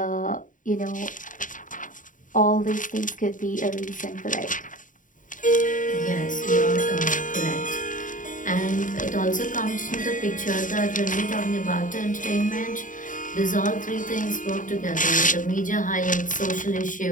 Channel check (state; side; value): late; right; 0.38 ms